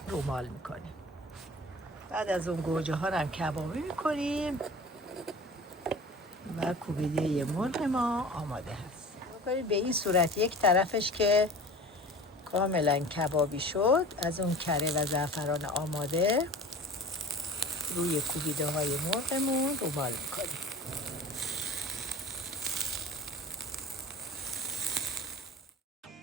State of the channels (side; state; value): both; normal; correlation 0.39